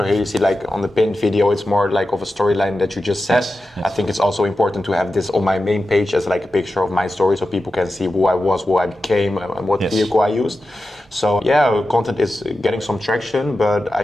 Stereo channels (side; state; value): both; normal; correlation 0.92